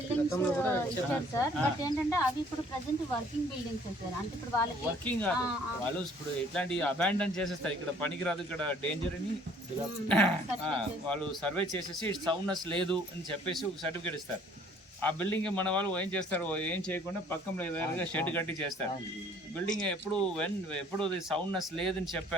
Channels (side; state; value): both; normal; correlation 0.57